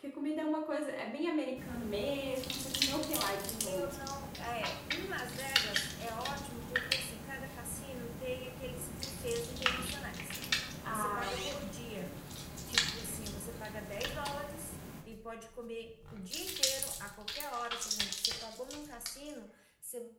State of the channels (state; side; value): identical; both; correlation 1.00